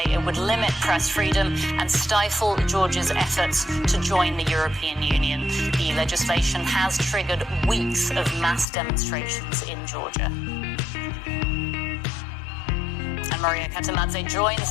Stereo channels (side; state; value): right; drops out; at 8.7 s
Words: it would limit press freedom and stifle Georgia's efforts to join the European Union. The legislation has triggered weeks of mass demonstrations in Georgia. And Maria Katamadze